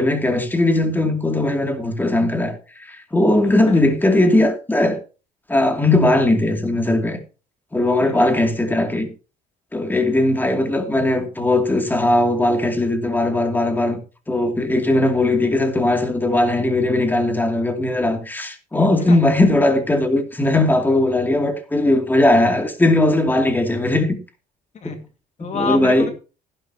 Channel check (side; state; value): both; normal; correlation 0.78